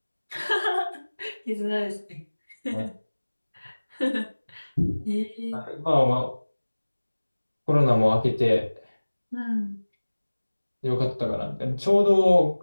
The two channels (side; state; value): both; inverted; correlation -1.00